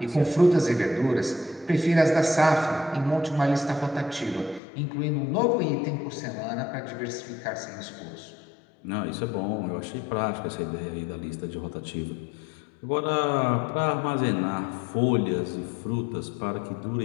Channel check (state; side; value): drops out; right; at 4.6 s